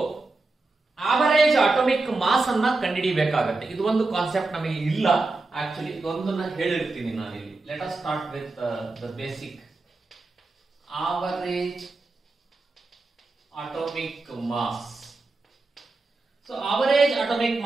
ಆವರೇಜ್ ಅಟೋಮಿಕ್ ಮಾಸ್ ಅನ್ನ ಕಂಡುಹಿಡಿಯಬೇಕಾಗತ್ತೆ. ಇದು ಒಂದು ಕಾನ್ಸೆಪ್ಟ್ ನಮಗೆ ಇಲ್ಲ. ಆಕ್ಚುಲಿ ಇದೊಂದನ್ನ ಹೇಳಿರ್ತೀನಿ ನಾನು ಇಲ್ಲಿ. Let us start with the basic average atomic mass. So average atomic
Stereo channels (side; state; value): left; quieter; 3.4 dB